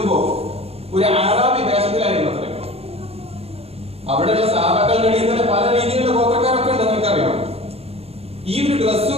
ഒരു അറാബി വേഷത്തിലായിരുന്നു അത്ര. അവിടെയുള്ള സഹാബാക്കളുടെ ഇടയിൽ തന്നെ പല രീതിയിലുള്ള ഗോത്രക്കാരൊക്കെ ഉണ്ട്, നിങ്ങൾക്കറിയാം. ഈ ഒരു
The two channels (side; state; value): left; late; 0.29 ms